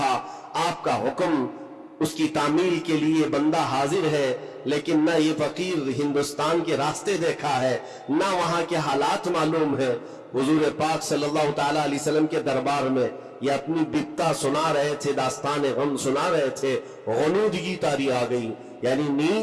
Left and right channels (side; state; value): both; identical; correlation 1.00